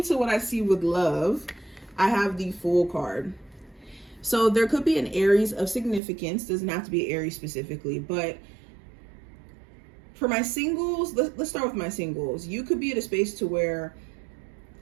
what I see with love, I have the Fool card. So there could be an Aries of significance. Doesn't have to be Aries specifically, but for my singles, let's start with my singles. You could be at a space to where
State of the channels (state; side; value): drops out; left; at 6.0 s